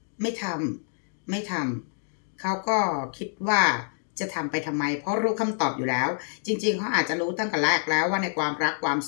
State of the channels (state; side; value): silent; right; digital silence